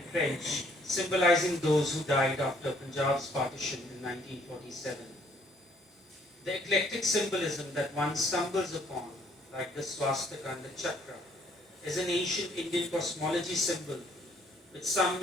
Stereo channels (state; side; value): normal; both; correlation 0.63